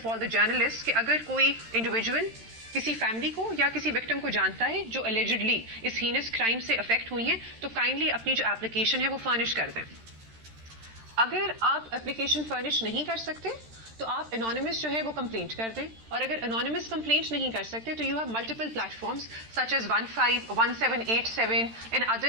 all the journalists کہ اگر کوئی انڈیویجول کسی فیملی کو یا کسی وکٹم کو جانتا ہے جو allegedly اس ہینس کرائم سے افیکٹ ہوئی ہیں تو کائنڈلی اپنی جو اپلیکیشن ہے وہ فرنش کر دیں. اگر آپ اپلیکیشن فرنش نہیں کر سکتے تو آپ انانیمس جو ہے وہ کمپلینٹ کر دیں، اور اگر انانیمس کمپلینٹ نہیں کر سکتے تو you have multiple platforms such as 151787 and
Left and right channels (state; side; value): late; left; 13 ms